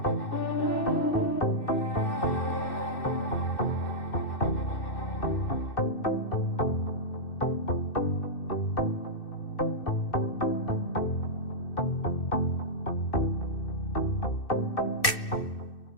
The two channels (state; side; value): late; right; 2.6 ms